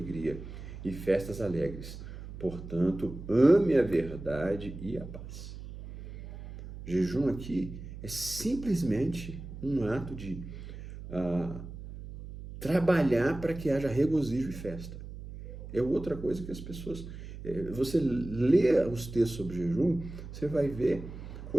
e festas alegres. Portanto, ame a verdade e a paz. Jejum aqui é simplesmente um ato de trabalhar para que haja regozijo e festa. É outra coisa que as pessoas... Você lê os textos sobre jejum, você vai ver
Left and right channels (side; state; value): right; noise; hum, 12 dB below the sound